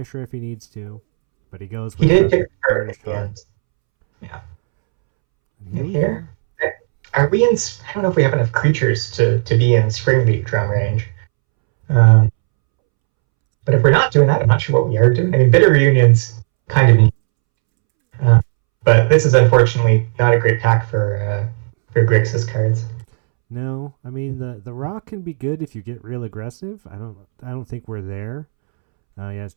if he needs to, but he goes with the Burnished Heart. Yeah. And here. Are we in? I don't know if we have enough creatures to be in Spring League drum range. But if we're not doing that, I'm not sure what we are doing. I mean, Bitter Reunion's kind of neat. But this is unfortunately not a great pack for Grixis cards. No, I mean the rock can be good if you get real aggressive. I don't think we're there. Yeah, it's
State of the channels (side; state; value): left; silent; 69 dB below the other